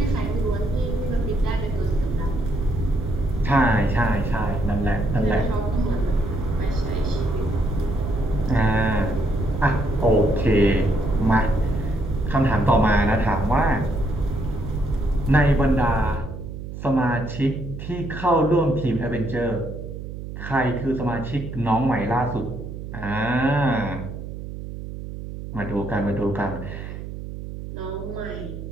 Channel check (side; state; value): right; noise; hum, 9 dB below the sound